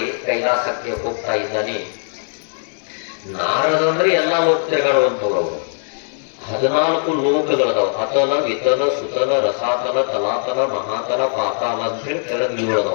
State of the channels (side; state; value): right; silent; digital silence